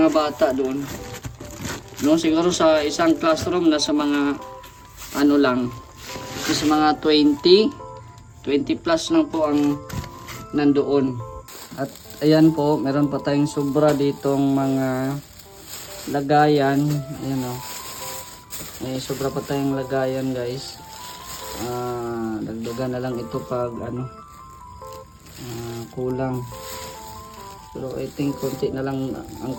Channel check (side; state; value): both; identical; correlation 1.00